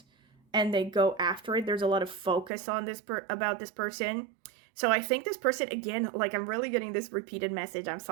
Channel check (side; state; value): left; drops out; at 2.5 s